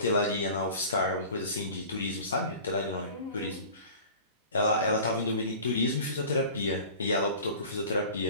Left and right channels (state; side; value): inverted; both; correlation -0.41